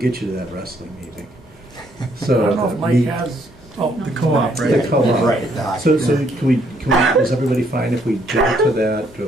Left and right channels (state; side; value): normal; both; correlation 0.69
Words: you to that wrestling meeting. So I don't know if Mike has, The co-op, right? The co-op. Right. So can we, is everybody fine if we jump to